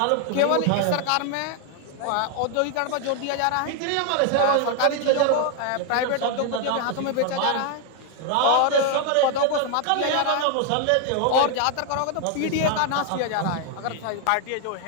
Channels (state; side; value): different; both; correlation 0.00